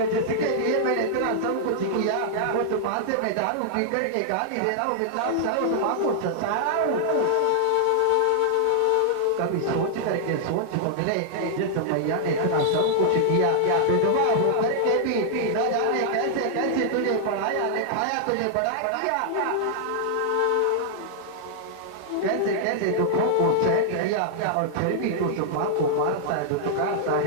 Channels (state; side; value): different; both; correlation -0.01